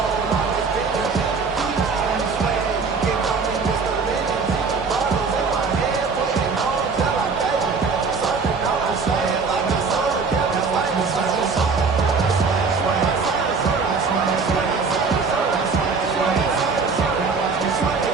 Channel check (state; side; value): quieter; left; 4.8 dB